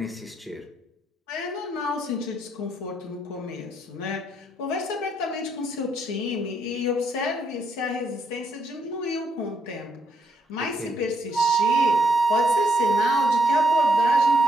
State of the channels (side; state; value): both; normal; correlation 0.74